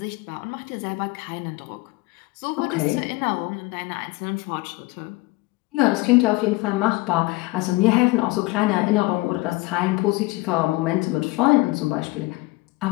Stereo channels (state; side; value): quieter; right; 22.1 dB